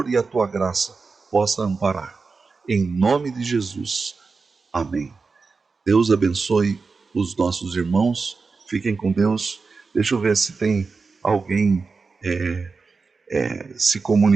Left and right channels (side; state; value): left; quieter; 4.5 dB